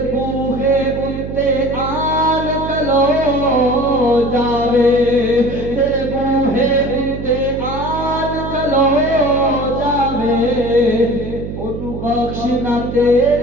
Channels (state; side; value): noise; right; hum, 8 dB below the sound